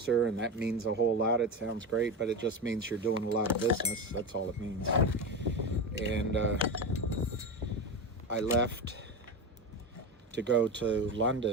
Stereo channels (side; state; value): both; normal; correlation 0.20